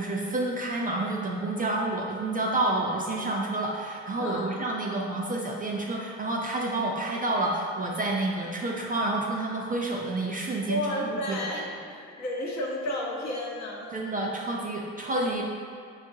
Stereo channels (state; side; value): normal; both; correlation 0.14